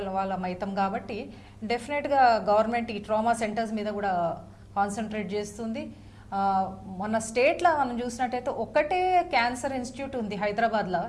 వాళ్ళం అవుతాం కాబట్టి డెఫినెట్గా గవర్నమెంట్ ఈ ట్రామా సెంటర్స్ మీద కూడా కాన్సన్ట్రేట్ చేస్తుంది. మన స్టేట్లో మనం చూసినట్టయితే ఒకటే క్యాన్సర్ ఇన్స్టిట్యూట్ ఉంది హైదరాబాద్లో,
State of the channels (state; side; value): identical; both; correlation 1.00